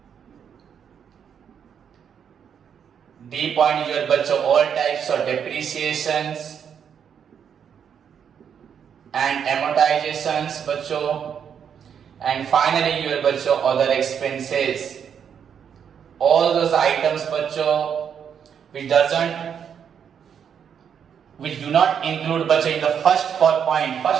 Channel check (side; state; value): left; quieter; 7.8 dB